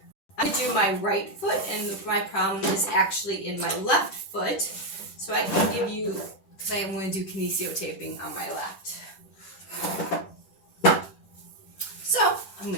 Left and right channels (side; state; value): right; late; 10 ms